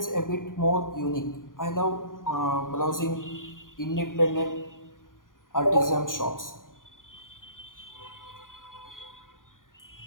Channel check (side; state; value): right; late; 0.89 ms